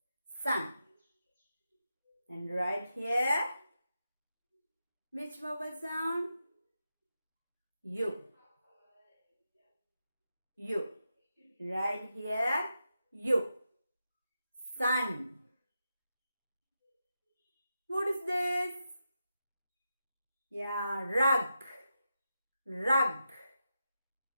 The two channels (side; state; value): both; inverted; correlation -0.88